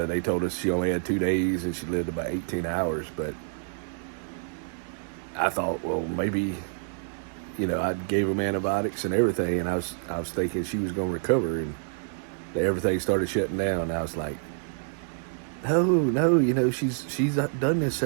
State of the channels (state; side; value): silent; left; digital silence